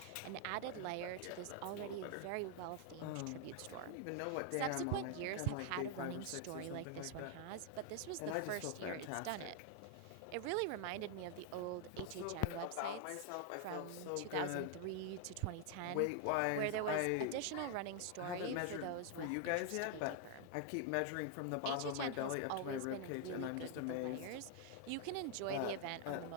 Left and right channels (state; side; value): different; both; correlation 0.00